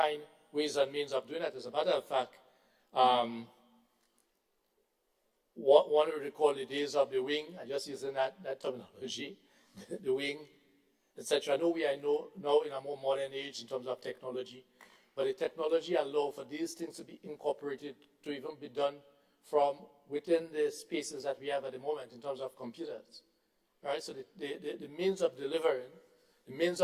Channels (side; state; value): both; identical; correlation 1.00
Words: ways and means of doing that. As a matter of fact, one would recall the days of the wing, I'm just using that terminology, the wing, etc. I know we are now in a more modern age in terms of technology, but the technology allows for these things to be incorporated, to even be done from within the spaces that we have at the moment in terms of computers. Right? So the means of delivering,